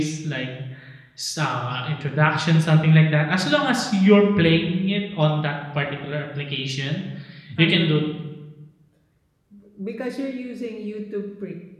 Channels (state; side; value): identical; both; correlation 1.00